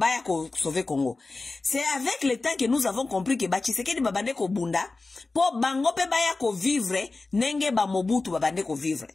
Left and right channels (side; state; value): right; quieter; 3.6 dB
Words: ko sauver Congo. C'est avec le temps que nous avons compris que ba Tshisekedi ba bande ko bunda po bango pe baya ko vivre nenge ba Mobutu ba bande ko vivre.